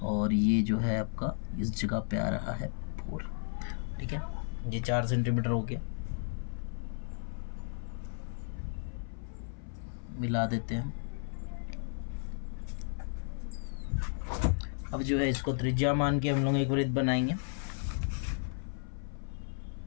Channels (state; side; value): silent; right; 55 dB below the other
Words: और ये जो है आपका इस जगह पे आ रहा है 4, ठीक है। ये 4 सेंटीमीटर हो गया, मिला देते हैं। अब जो है इसको त्रिज्या मान के हम लोग एक वृत्त बनाएंगे।